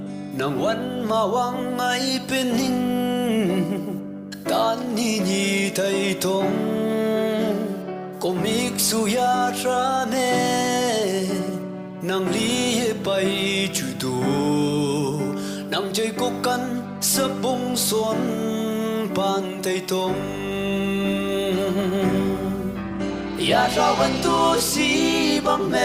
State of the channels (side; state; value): both; identical; correlation 1.00